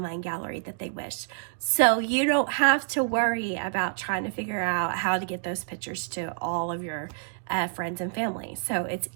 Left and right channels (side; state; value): left; silent; digital silence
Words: gallery that they wish. So you don't have to worry about trying to figure out how to get those pictures to all of your friends and family. So it's